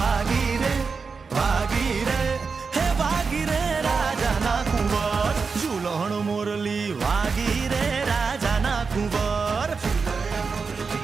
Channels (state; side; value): quieter; left; 5.0 dB